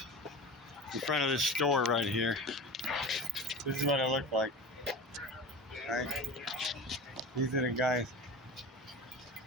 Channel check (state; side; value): normal; both; correlation 0.31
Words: this store right here. This is what I look like. Right? These are the guys.